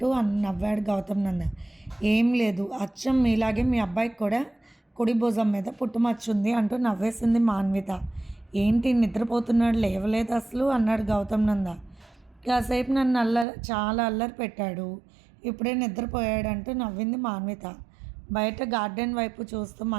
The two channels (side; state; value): left; drops out; at 13.5 s